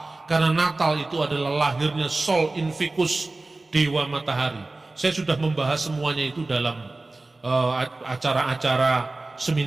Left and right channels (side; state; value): left; quieter; 3.1 dB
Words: karena Natal itu adalah lahirnya Sol Invictus, Dewa Matahari. Saya sudah membahas semuanya itu dalam acara-acara